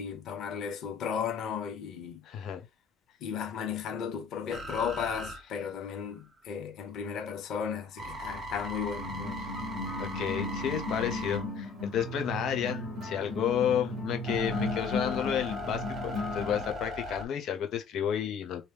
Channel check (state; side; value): quieter; right; 5.9 dB